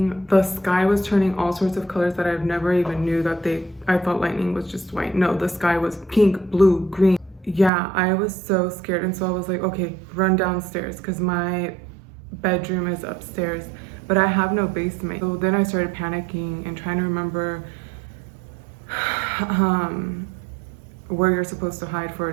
the sky was turning all sorts of colors that I've never even knew that I thought lightning was just white. No, the sky was pink, blue, green. Yeah, I was so scared, and so I was like, okay, run downstairs because my bedroom is upstairs, but I have no basement. So then I started panicking and trying to remember where you're supposed to hide for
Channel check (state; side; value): drops out; left; at 7.7 s